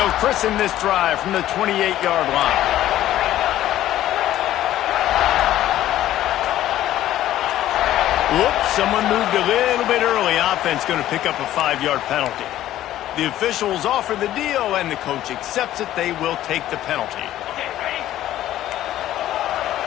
christen this drive from the 28-yard line. Whoops, someone moved a little bit early. Offense going to pick up a 5-yard penalty. The officials offer the deal, and the coach accepts it. They will take the penalty. Okay, ready?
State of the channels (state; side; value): quieter; right; 13.3 dB